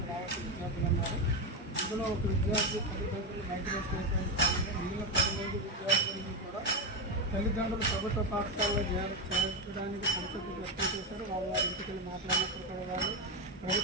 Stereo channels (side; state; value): both; normal; correlation 0.11